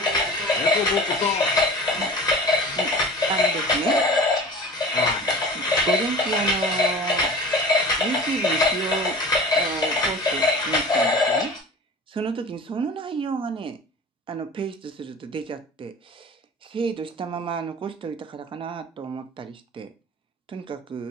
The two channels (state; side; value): normal; both; correlation 0.39